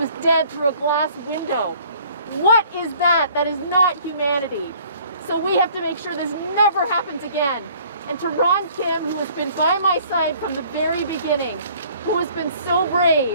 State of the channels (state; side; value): inverted; both; correlation -0.55